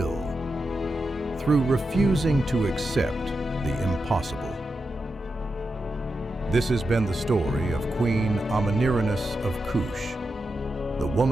through refusing to accept the impossible. This has been the story of Queen Amanirenas of Kush, the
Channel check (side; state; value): both; normal; correlation 0.88